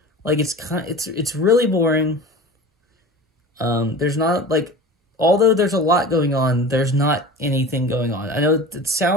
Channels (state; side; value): normal; both; correlation 0.35